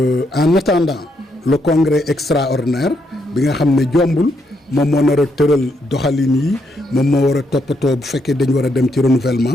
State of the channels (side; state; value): both; normal; correlation 0.77